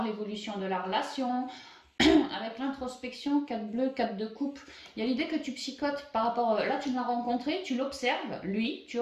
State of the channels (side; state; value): both; identical; correlation 1.00